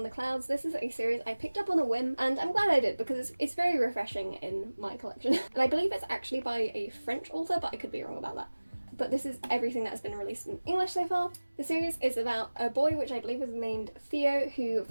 the Clouds. This is a series I picked up on a whim, and I'm glad I did because it's very refreshing in my collection. And I believe it's actually by a French author, but I could be wrong about that. But this is everything that's been released in English so far. The series is about a boy, which I believe is named Theo, who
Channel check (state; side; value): inverted; both; correlation -1.00